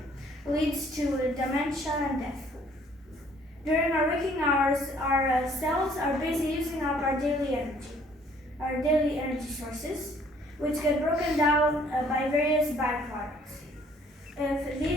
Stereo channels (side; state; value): both; normal; correlation 0.60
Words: leads to dementia and death. During our waking hours, our cells are busy using up our daily energy sources, which get broken down by various byproducts. If